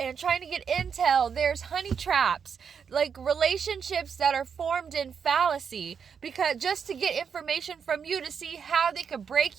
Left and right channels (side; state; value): left; quieter; 6.8 dB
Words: trying to get intel. There's honey traps, like relationships that are formed in fallacy, because just to get information from you to see how they could